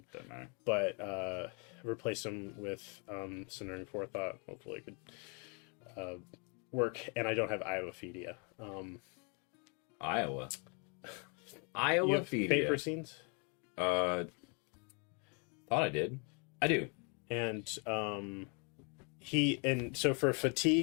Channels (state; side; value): quieter; right; 35.4 dB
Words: matter. But replaced him with Centering Forethought. Hopefully, it could work. And I don't have Iowa Fedia. Iowa. You Iowa have feed. Paper Scenes, Thought I did. I do. and so for